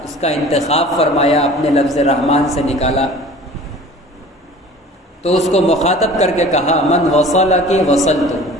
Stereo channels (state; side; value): normal; both; correlation 0.44